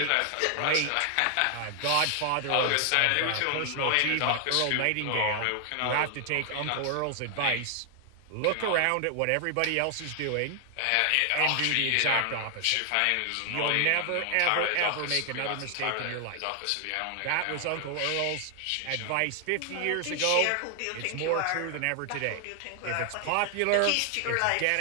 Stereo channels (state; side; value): different; both; correlation 0.00